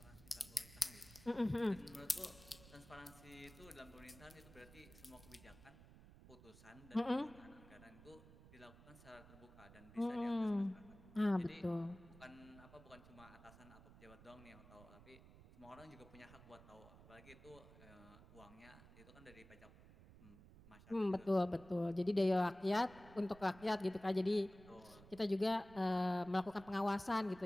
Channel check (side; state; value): right; noise; rumble, 19 dB below the sound